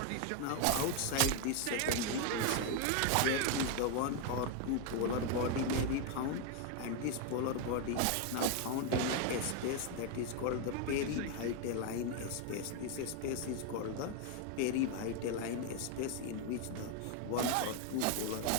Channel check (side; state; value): both; different; correlation 0.01